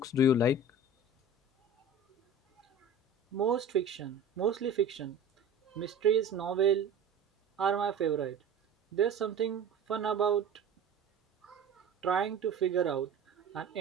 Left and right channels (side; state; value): left; quieter; 3.7 dB